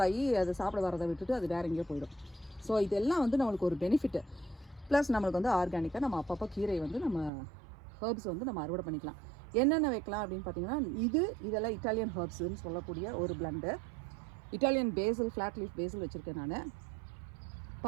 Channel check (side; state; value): left; drops out; at 7.3 s